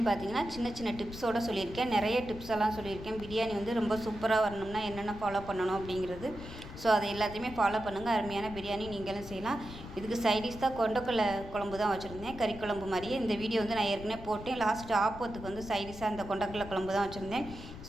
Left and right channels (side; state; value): left; noise; rumble, 13 dB below the sound